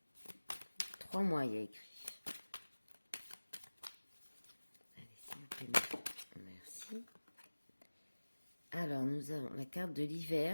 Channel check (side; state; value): both; inverted; correlation -1.00